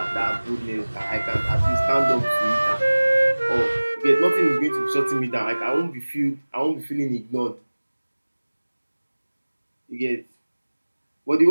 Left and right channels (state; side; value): inverted; both; correlation -1.00